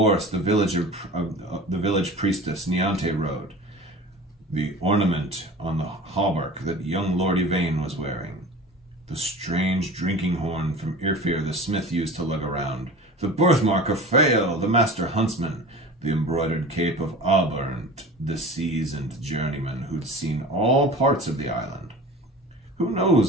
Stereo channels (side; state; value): both; normal; correlation 0.37